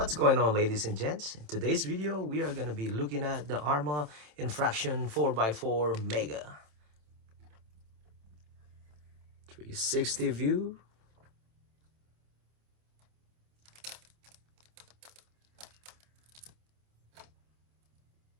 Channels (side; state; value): left; late; 27 ms